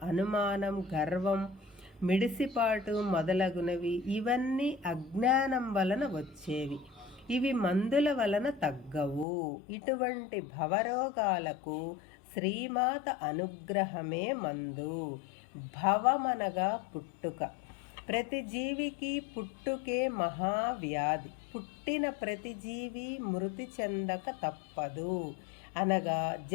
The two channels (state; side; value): drops out; right; at 9.2 s